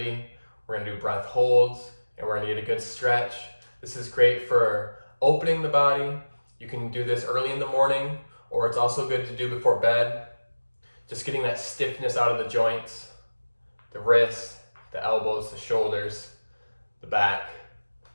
we're going to do breath holds, and we're going to get a good stretch. This is great for opening the body. You can do this early in the morning, or it's also good to do before bed. Just getting that stiffness out of the joints, the wrists, the elbows, the shoulders, the back,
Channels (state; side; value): inverted; both; correlation -1.00